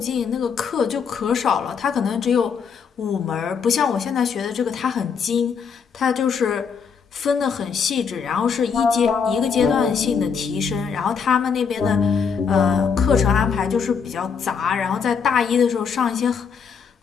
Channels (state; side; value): quieter; right; 6.2 dB